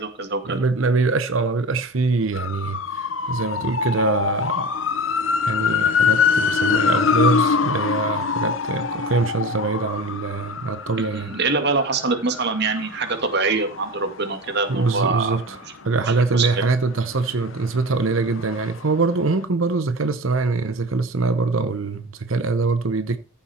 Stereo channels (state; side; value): normal; both; correlation 0.32